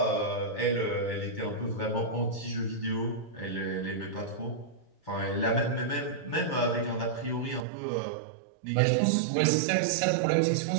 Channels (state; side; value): drops out; left; at 7.7 s